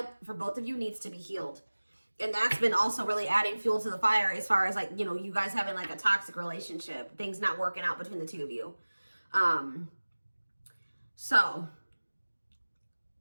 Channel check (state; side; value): inverted; both; correlation -1.00